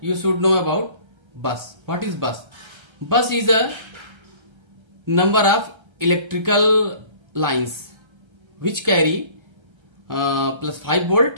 should know about bus. What is bus? Bus is a number of electrical lines which carry plus 5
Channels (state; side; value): late; left; 1.3 ms